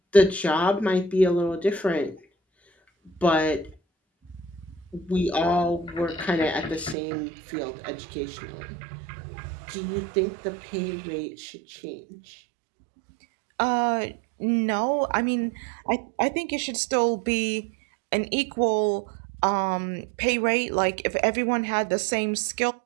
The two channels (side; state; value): left; drops out; at 7.0 s